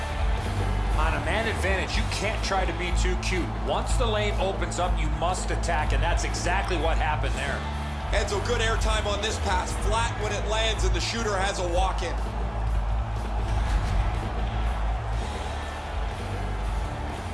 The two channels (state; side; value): identical; both; correlation 1.00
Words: On a man advantage, you can't try to be too cute. Once the lane opens up, you must attack, and that's exactly what happened there. Enzo, good airtime on this pass. Flat when it lands, and the shooter has a walk-in.